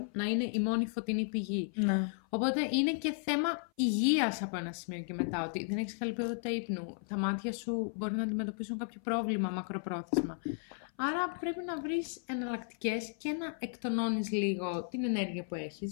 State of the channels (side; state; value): right; silent; 55 dB below the other